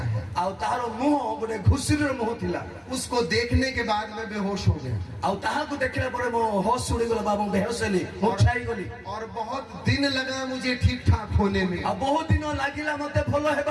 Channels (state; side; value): identical; both; correlation 1.00